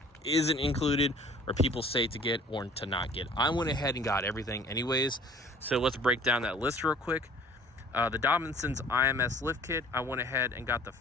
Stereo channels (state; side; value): normal; both; correlation 0.51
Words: isn't included, or people say to get or to not get. I went ahead and got everything anyways, so let's break down that list real quick. The Dobinson's IMS lift kit, I went ahead and got the